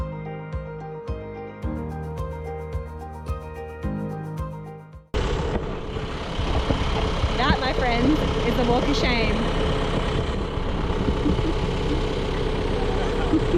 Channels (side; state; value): both; identical; correlation 1.00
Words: That, my friends, is the walk of shame.